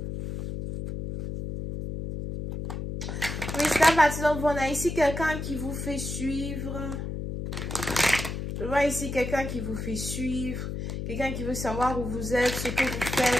Oui, c'est parti. Donc, on a ici quelqu'un qui vous fait suivre. Je vois ici quelqu'un qui vous fait suivre. Quelqu'un qui veut savoir où vous êtes, ce que vous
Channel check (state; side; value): noise; left; hum, 5 dB below the sound